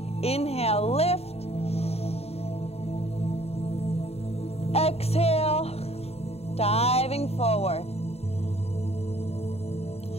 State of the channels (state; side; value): late; right; 0.30 ms